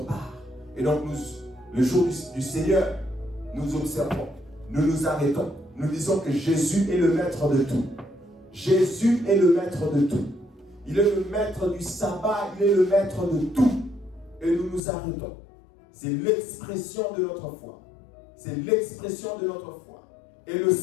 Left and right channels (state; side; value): drops out; right; at 14.8 s